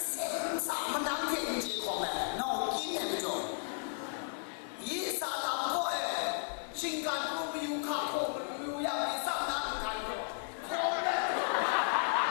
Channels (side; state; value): right; silent; 55 dB below the other